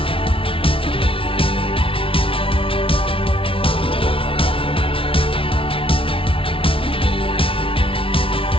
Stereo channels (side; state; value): right; late; 0.26 ms